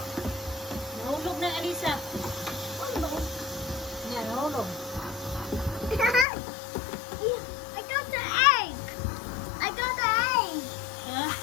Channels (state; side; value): drops out; right; at 6.2 s